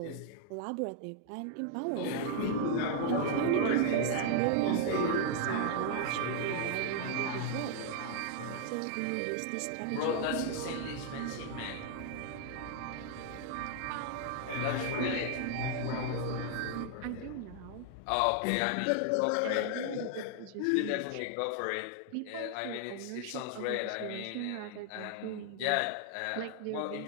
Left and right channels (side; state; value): both; different; correlation 0.00